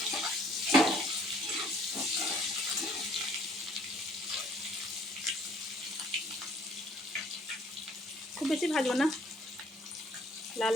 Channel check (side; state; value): both; normal; correlation 0.60